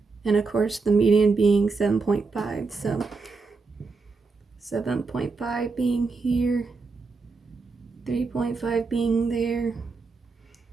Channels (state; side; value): quieter; left; 4.3 dB